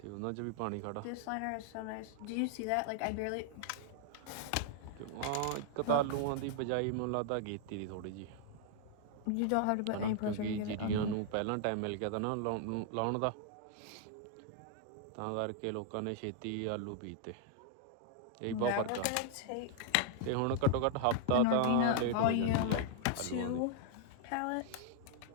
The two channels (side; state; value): both; different; correlation 0.00